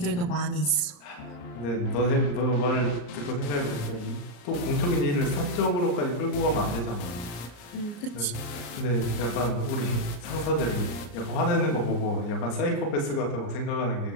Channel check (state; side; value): late; right; 34 ms